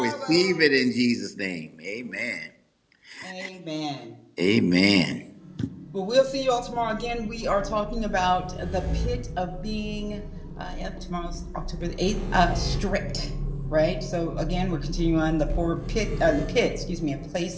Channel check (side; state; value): both; identical; correlation 1.00